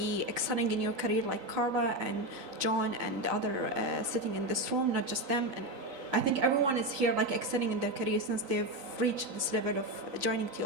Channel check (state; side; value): late; left; 3.9 ms